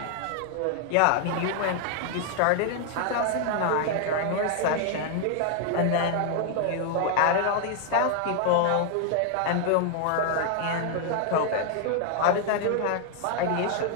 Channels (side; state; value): both; different; correlation 0.00